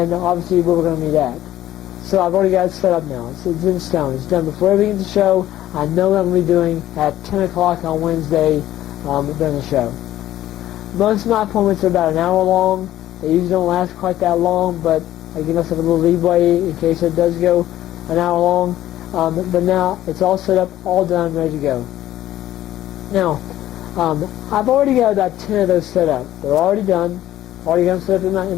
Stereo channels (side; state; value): right; quieter; 13.5 dB